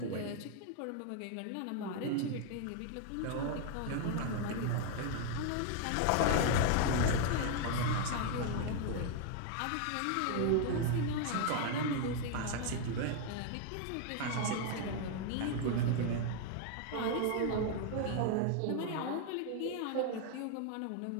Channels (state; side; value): different; both; correlation 0.00